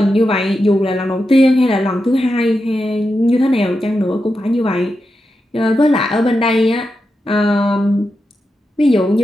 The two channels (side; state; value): both; normal; correlation 0.88